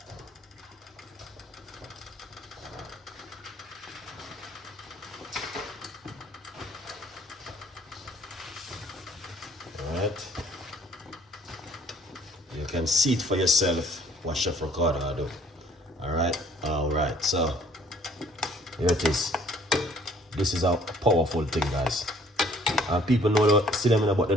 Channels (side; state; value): both; normal; correlation 0.58